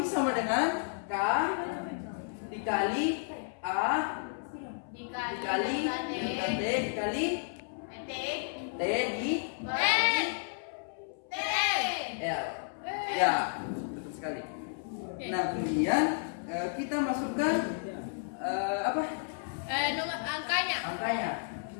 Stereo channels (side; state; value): right; silent; 56 dB below the other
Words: sama dengan K dikali A dikali delta T dikali T di L. Ya, betul sekali. Nah, kemudian kita masukkan apa? Nomor angkanya. Angkanya.